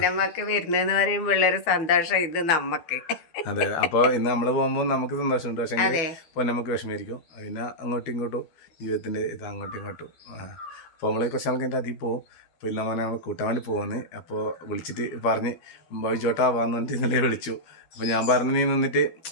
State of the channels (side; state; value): right; late; 12 ms